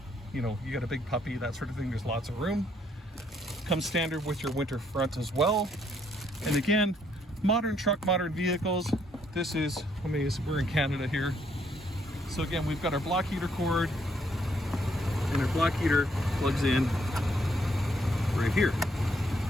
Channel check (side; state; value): both; normal; correlation 0.70